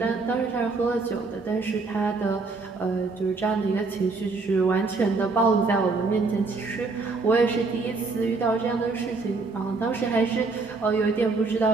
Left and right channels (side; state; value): left; quieter; 3.9 dB